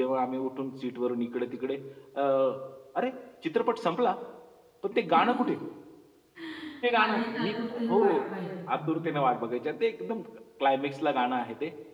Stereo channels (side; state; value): both; identical; correlation 1.00